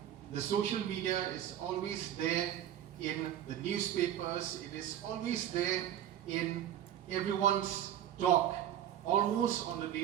the social media, is always there in the newspapers, it is always there in everyone's talk almost on a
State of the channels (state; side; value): quieter; left; 11.0 dB